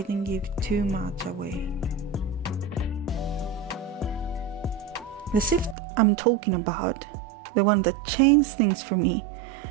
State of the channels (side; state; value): left; drops out; at 5.8 s